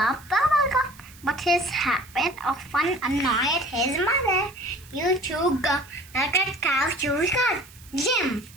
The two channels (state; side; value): noise; right; hiss, 23 dB below the sound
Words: bubblegum, but his habit often annoyed his mother. You chew gum like a cow chews cud, Jim,